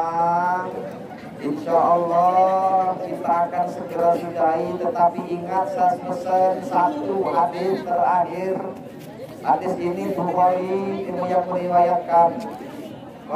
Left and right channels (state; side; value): identical; both; correlation 1.00